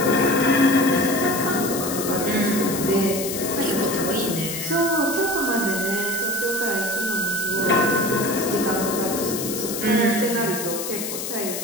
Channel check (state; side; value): noise; left; hiss, 5 dB below the sound